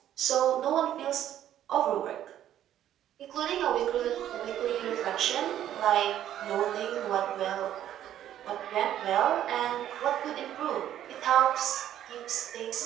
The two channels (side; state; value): left; quieter; 11.5 dB